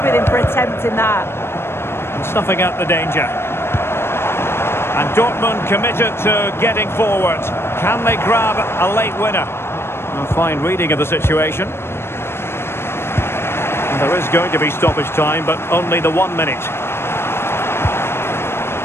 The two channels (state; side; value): late; right; 0.12 ms